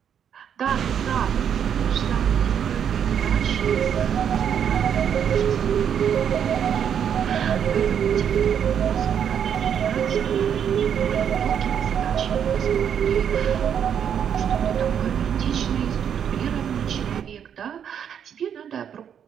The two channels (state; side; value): quieter; left; 8.5 dB